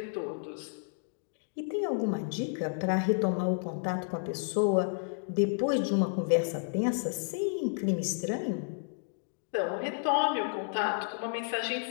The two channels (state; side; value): silent; right; digital silence